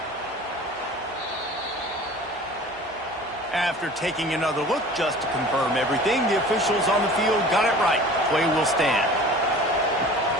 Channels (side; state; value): both; normal; correlation 0.43